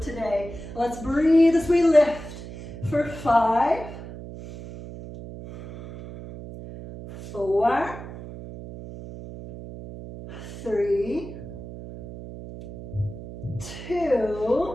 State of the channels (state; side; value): noise; right; hum, 12 dB below the sound